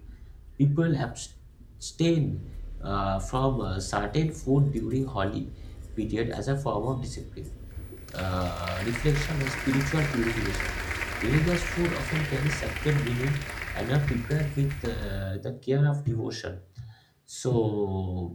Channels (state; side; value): identical; both; correlation 1.00